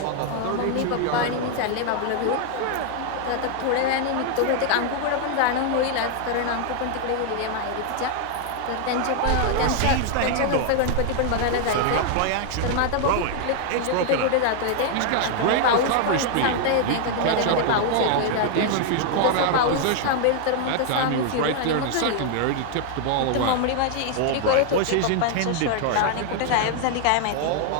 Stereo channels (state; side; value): different; both; correlation 0.00